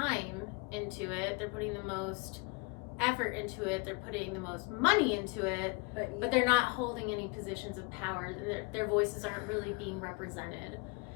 into it, they're putting the most effort into it, they're putting the most money into it, but they're not holding any positions of power. Their voices aren't really being represented.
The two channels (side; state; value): right; quieter; 29.0 dB